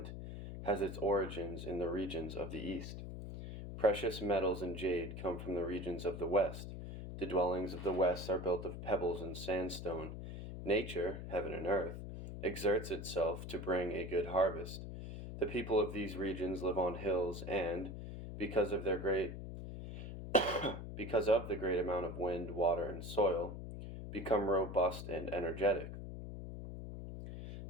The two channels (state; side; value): noise; left; hum, 8 dB below the sound